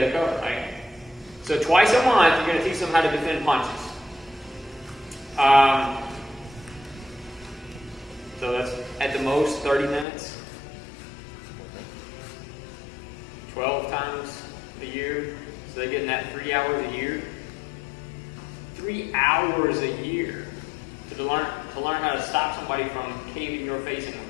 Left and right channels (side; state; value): right; drops out; at 10.1 s